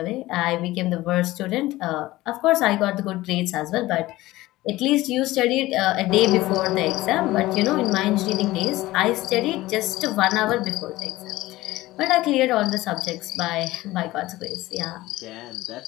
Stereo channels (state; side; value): quieter; right; 17.8 dB